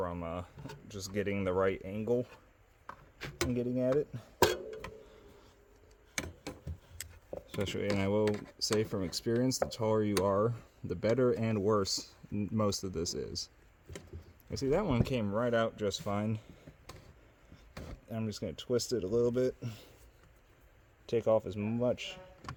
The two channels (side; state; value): both; identical; correlation 1.00